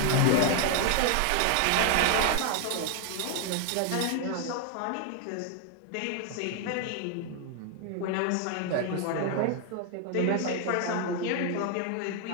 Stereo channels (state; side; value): different; both; correlation 0.00